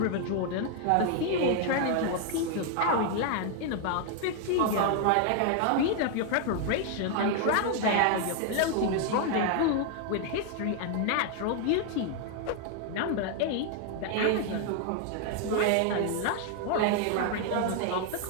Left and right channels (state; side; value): different; both; correlation 0.00